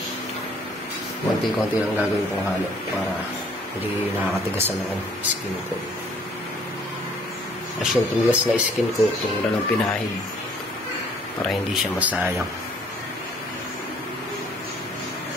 Konti-konti lang gagawin kong halo para hindi nakakatigasan ng skin coat. As yung tumigas na skin coat, yung lang pinahid para hindi siya masayang.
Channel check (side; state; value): both; normal; correlation 0.59